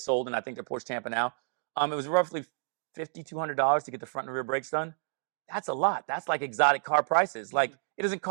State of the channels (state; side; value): silent; left; digital silence